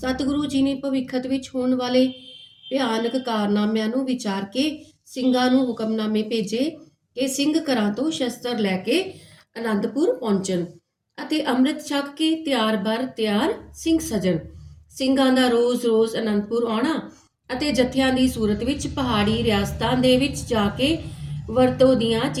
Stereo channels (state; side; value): identical; both; correlation 1.00